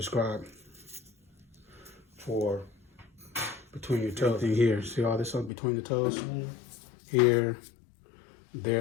for between your toes. Here, see all this up between the toes? Here,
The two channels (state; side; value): drops out; right; at 5.5 s